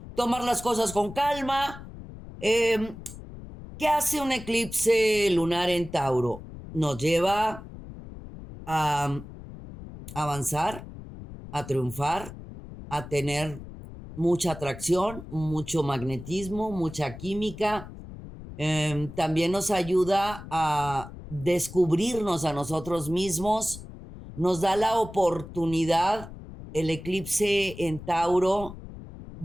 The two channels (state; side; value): noise; left; rumble, 14 dB below the sound